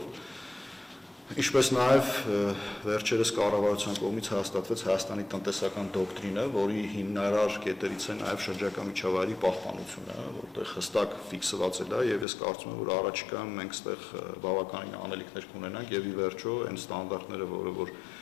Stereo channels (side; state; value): right; drops out; at 12.2 s